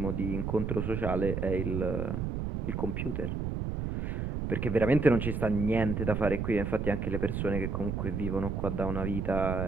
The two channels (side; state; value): right; noise; rumble, 2 dB below the sound